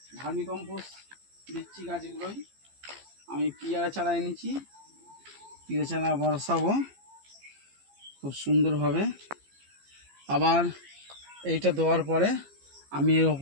ভার্মি কম্পোস্ট দিচ্ছি গাছগুলোই। আমি পিয়ারা চারা এনেছি, পিয়ারা চারা বসাবো খুব সুন্দরভাবে। আবার এইটা দেওয়ার পরে আমি এর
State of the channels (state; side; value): late; left; 15 ms